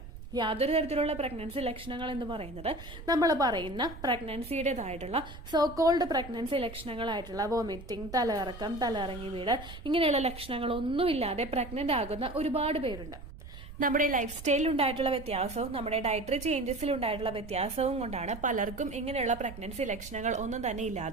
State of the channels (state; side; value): noise; right; rumble, 13 dB below the sound